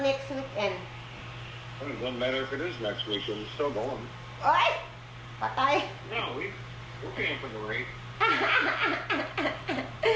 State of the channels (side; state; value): both; identical; correlation 1.00